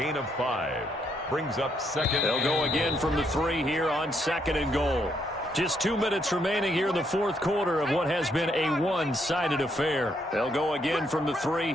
of 5. Brings up second. They'll go again from the 3 here on second and goal. Just 2 minutes remaining here in the fourth quarter of what has been a one-sided affair. They'll go again from the 3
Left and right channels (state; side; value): normal; both; correlation 0.74